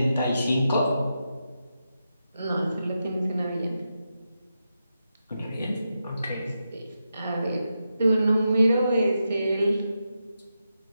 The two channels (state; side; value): inverted; both; correlation -0.87